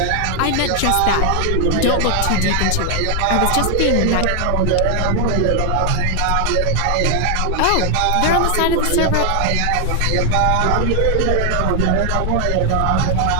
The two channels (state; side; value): different; both; correlation 0.00